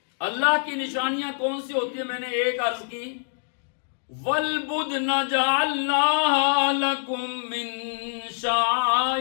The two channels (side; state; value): right; silent; digital silence